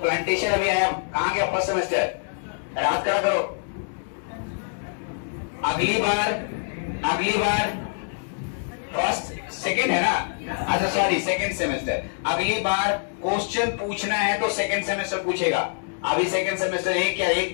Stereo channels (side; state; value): right; silent; digital silence